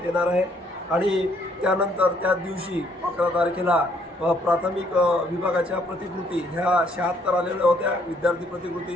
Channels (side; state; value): both; normal; correlation 0.67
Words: येणार आहे. आणि त्यानंतर त्याच दिवशी 11 तारखेला प्राथमिक विभागाच्या प्रतिकृती ह्या 76 आलेल्या होत्या विद्यार्थी